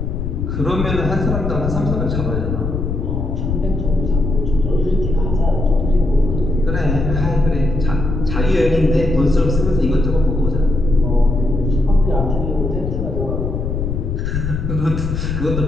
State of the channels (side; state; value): left; noise; rumble, 2 dB below the sound